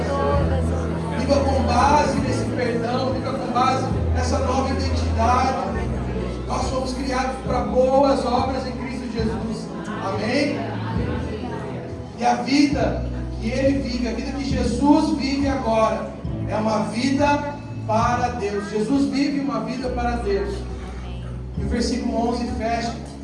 todas. Viva com base nesse perdão, viva com base nessa nova identidade. Nós somos criados para boas obras em Cristo Jesus. Amém? E a vida que Ele vive, a vida que Jesus vive agora, é uma vida para Deus. Jesus vive uma vida para Deus. E o versículo 11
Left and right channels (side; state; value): both; identical; correlation 1.00